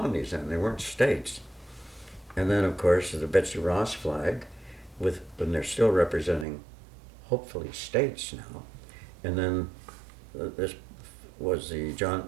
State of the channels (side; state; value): left; drops out; at 6.5 s